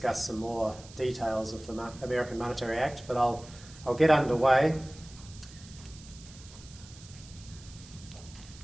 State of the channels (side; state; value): right; noise; hiss, 19 dB below the sound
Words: some more details of the American Monetary Act, but I'll get underway.